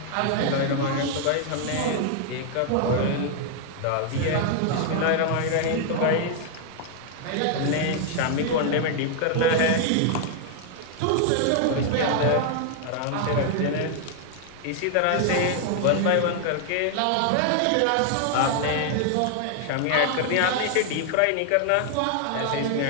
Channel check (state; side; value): different; both; correlation 0.00